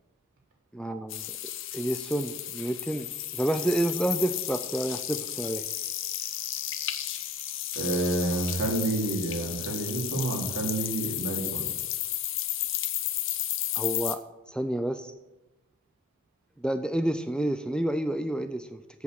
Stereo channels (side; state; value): both; normal; correlation 0.54